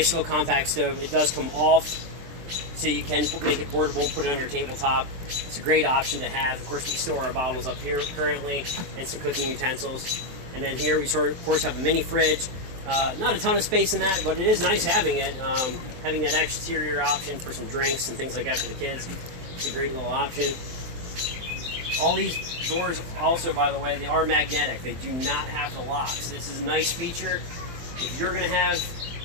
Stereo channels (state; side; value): late; left; 23 ms